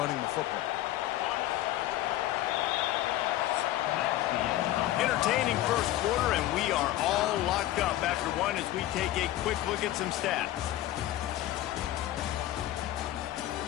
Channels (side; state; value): right; quieter; 14.5 dB